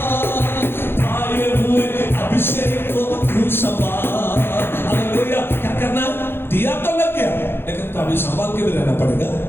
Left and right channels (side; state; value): right; late; 0.11 ms